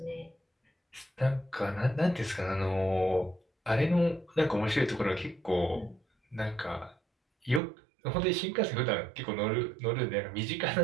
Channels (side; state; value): left; drops out; at 7.6 s